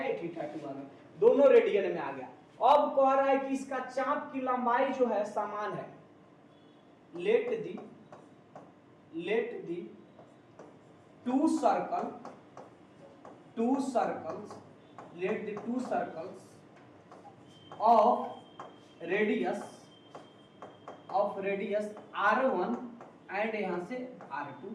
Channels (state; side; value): identical; both; correlation 1.00